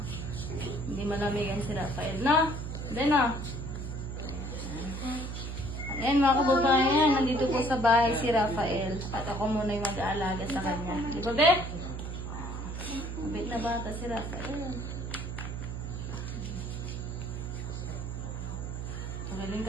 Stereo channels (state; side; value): noise; right; hum, 5 dB below the sound